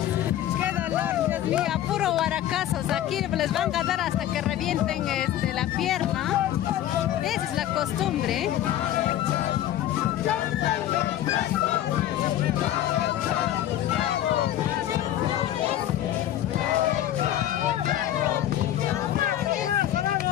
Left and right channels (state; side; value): quieter; right; 12.3 dB